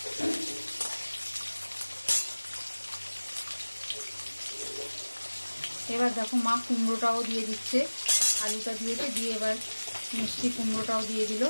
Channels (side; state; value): both; inverted; correlation -1.00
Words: এবার দেখো মা কুমড়োটাও দিয়ে দিচ্ছে। আলুটা দিয়েছে, দিয়ে এবার মিষ্টি কুমড়োটাও দিয়ে দিল।